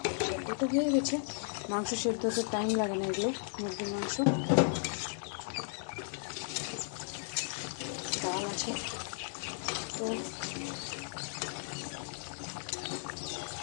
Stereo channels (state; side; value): silent; right; 54 dB below the other